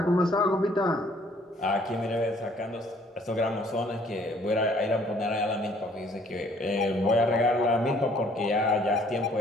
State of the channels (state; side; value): normal; both; correlation 0.60